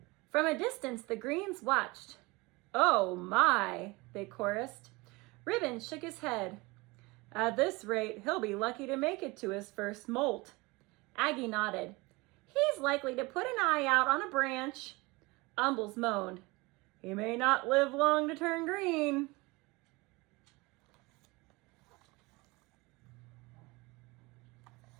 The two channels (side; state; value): left; quieter; 23.9 dB